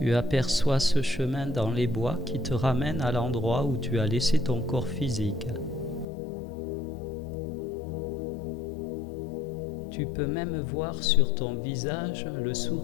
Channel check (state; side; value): drops out; right; at 6.1 s